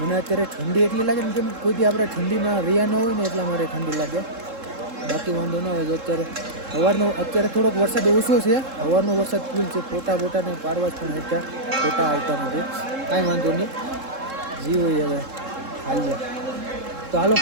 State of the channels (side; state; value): left; late; 3.7 ms